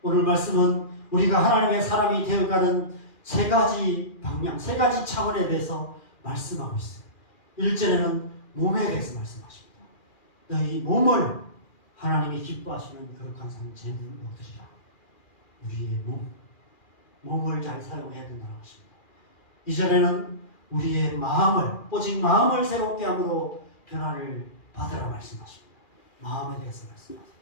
오늘 말씀은 우리가 하나님의 사람이 되어가는 세 가지 방향, 세 가지 차원에 대해서 말씀하고 있어요. 1절에는 몸에 대해서 말씀하십니다. 너희 몸을 하나님이 기뻐하시는 거룩한 상 제물로 드리라. 우리의 몸을 잘 사용해야 된다고 하십니다. 2절에는 우리의 마음을, 오직 마음을 새롭게 함으로 변화를 받으라 말씀하십니다. 마음에 대해서 말씀하세요.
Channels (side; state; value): right; late; 2.4 ms